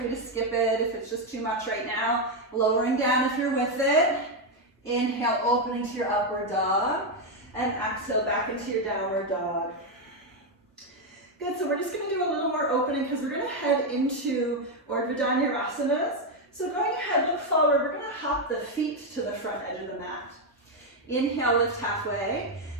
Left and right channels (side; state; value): both; normal; correlation 0.04